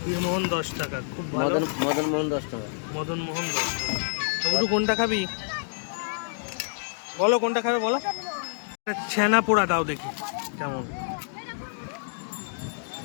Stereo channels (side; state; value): right; silent; digital silence